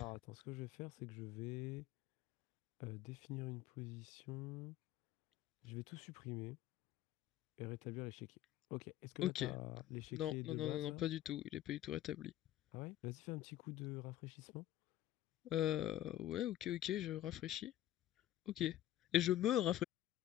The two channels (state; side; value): quieter; right; 13.5 dB